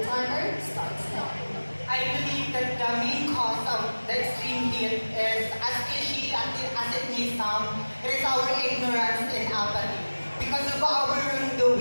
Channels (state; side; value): inverted; both; correlation -1.00